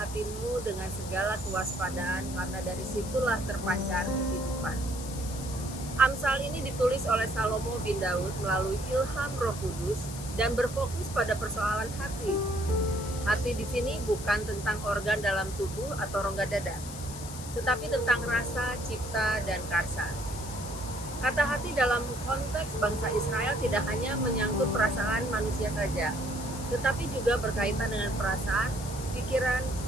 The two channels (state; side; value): noise; left; hiss, 12 dB below the sound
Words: dengan segala kewaspadaan karena dari situlah terpancar kehidupan. Amsal ini ditulis oleh Salomo bin Daud melalui ilham Roh Kudus dan berfokus pada persoalan hati. Hati di sini bukan tentang organ dalam tubuh atau rongga dada, tetapi tentang rasa, cipta, dan karsa. Kata hati dalam konteks bangsa Israel tidak hanya menyangkut perasaan manusia saja, tetapi juga berkaitan dengan perasaan, pikiran,